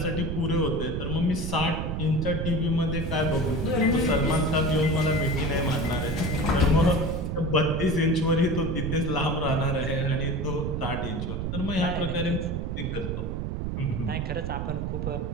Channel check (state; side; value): noise; right; rumble, 3 dB below the sound